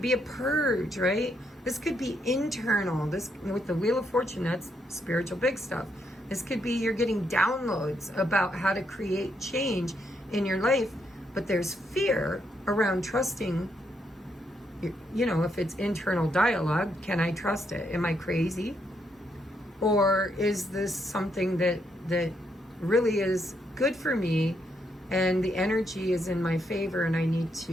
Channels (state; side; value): normal; both; correlation 0.77